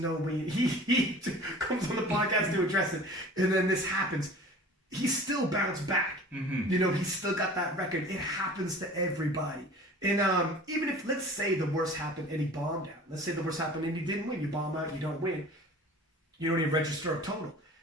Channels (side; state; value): both; normal; correlation 0.43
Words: way. He comes on the podcast to address it, and then this happens. He still bounced back. Mm-hmm. You know, he's still got that record. It happens to everybody. And even if, let's say the worst happened and he bombed out. Let's say the worst happened and he didn't win. You bomb out, you don't win. You don't even register a total.